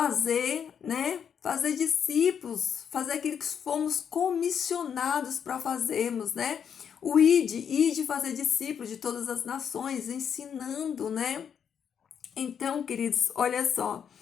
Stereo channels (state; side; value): quieter; right; 7.8 dB